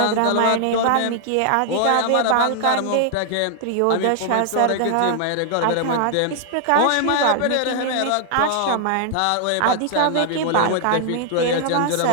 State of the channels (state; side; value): different; both; correlation 0.00